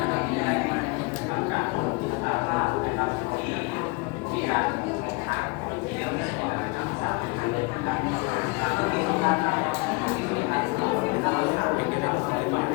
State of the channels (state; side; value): quieter; right; 27.8 dB